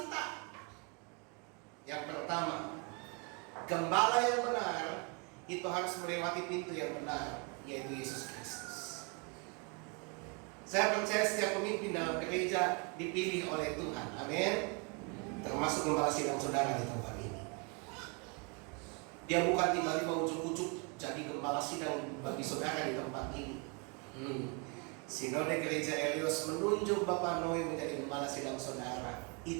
Yang pertama, gembala yang benar itu harus melewati pintu yang benar, yaitu Yesus Kristus. Saya percaya setiap pemimpin dalam gereja dipilih oleh Tuhan. Amin. Termasuk gembala sidang saudara di tempat ini. Dia bukan tiba-tiba ujuk-ujuk jadi gembala sidang bagi saudara di tempat ini. Sinode Gereja Eleos menunjuk Bapak Noe menjadi gembala sidang saudara.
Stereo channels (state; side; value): quieter; left; 34.1 dB